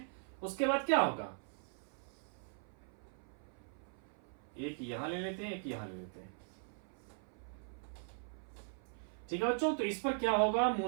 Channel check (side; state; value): left; silent; 51 dB below the other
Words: उसके बाद क्या होगा, एक यहां ले लेते हैं, एक यहां ले लेते हैं। ठीक है बच्चों, तो इस पर क्या होगा,